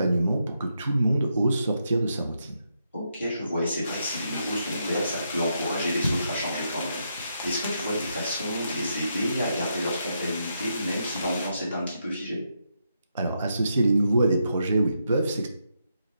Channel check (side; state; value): both; inverted; correlation -0.81